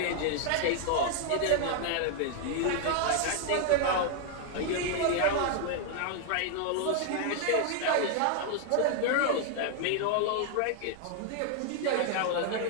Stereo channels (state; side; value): different; both; correlation 0.00